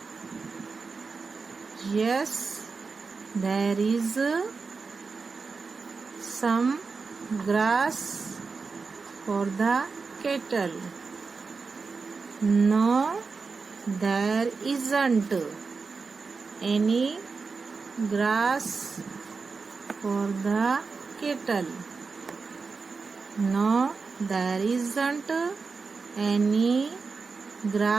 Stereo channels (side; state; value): left; quieter; 4.6 dB